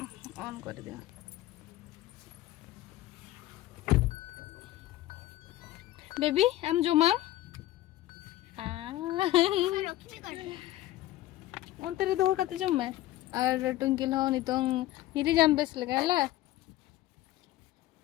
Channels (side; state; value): right; quieter; 15.4 dB